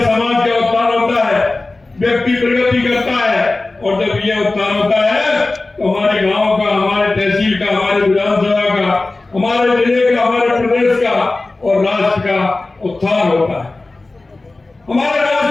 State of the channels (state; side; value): quieter; right; 3.2 dB